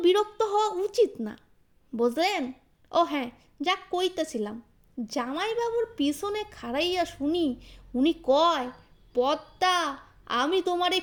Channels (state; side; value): identical; both; correlation 1.00